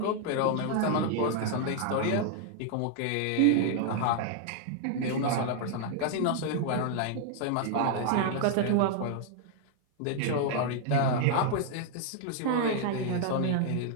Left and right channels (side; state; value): both; different; correlation -0.01